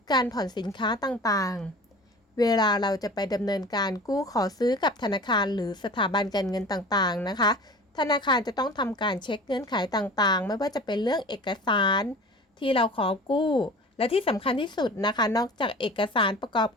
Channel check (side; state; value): both; normal; correlation 0.40